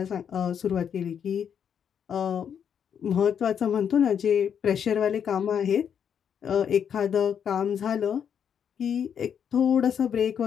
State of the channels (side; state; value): right; quieter; 8.0 dB